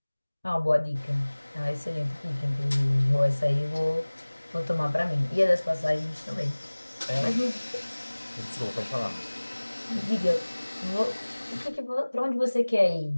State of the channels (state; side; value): inverted; both; correlation -1.00